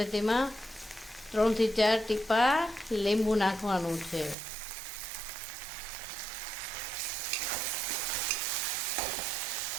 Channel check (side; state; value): left; drops out; at 4.4 s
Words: તેમાં 3 થી 4 ટીપા લીંબુ નાખવાનું છે.